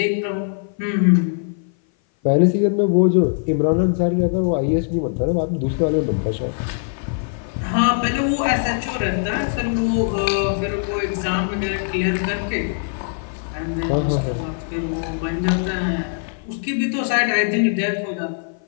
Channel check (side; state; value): right; silent; 57 dB below the other